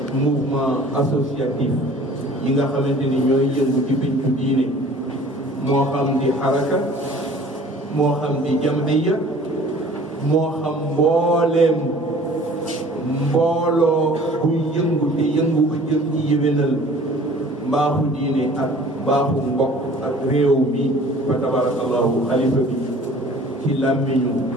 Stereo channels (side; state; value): both; normal; correlation 0.49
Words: mouvement associatif yi nga xamante ni ñooy yëngu ci pincu diine moo xam di xaraka moo xam di jamhiya moo xam mbooleem mbooloo buy yëngu te yëngu ba jëm ci yéwénal mbaaxu diine ak mbaaxu mbokk ak réew mi fa tabarakallahu xalifa bi ci làmmiñu